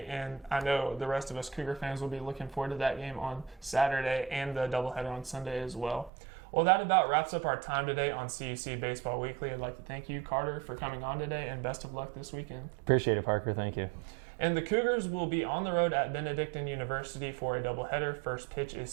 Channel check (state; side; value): drops out; left; at 6.1 s